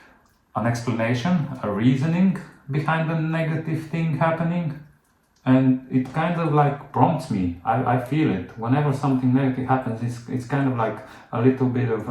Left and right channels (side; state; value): both; identical; correlation 1.00